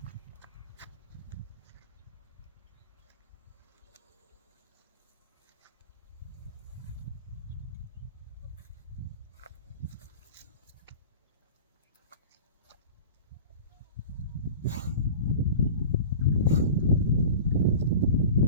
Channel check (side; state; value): both; inverted; correlation -0.37